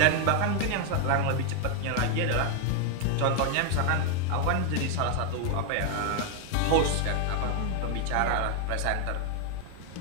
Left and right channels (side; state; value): both; different; correlation 0.00